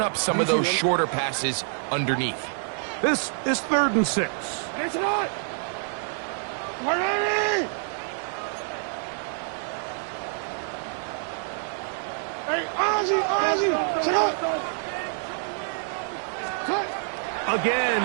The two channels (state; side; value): silent; left; 60 dB below the other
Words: up some of those shorter passes underneath. This is 3rd and 6. It's not. 180. Hey, Ozzy. Sit up. Again,